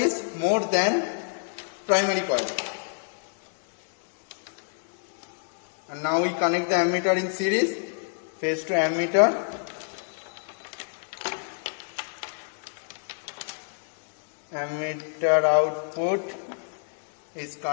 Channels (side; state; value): right; silent; 58 dB below the other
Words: more than primary coil. And now we connect the ammeter in series, phase to ammeter. Ammeter output is